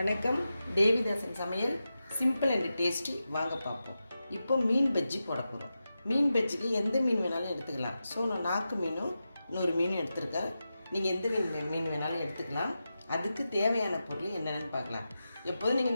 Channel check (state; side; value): inverted; both; correlation -0.91